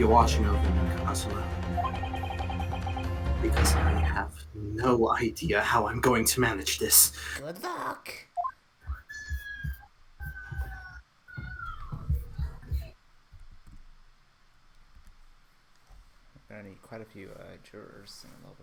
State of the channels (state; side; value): identical; both; correlation 1.00